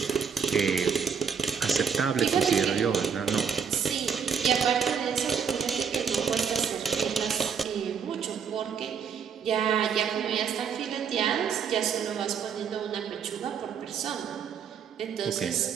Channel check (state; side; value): quieter; left; 6.9 dB